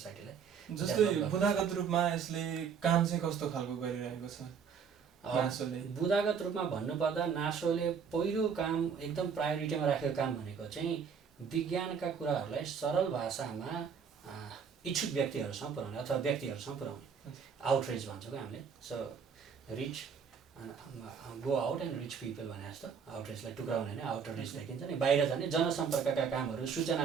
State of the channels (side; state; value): left; quieter; 6.6 dB